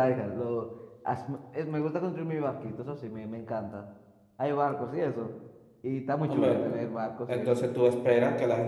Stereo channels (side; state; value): both; identical; correlation 1.00